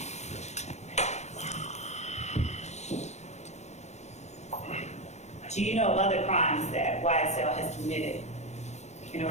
Do you know of other crimes that YSL has committed in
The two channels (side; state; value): right; late; 0.33 ms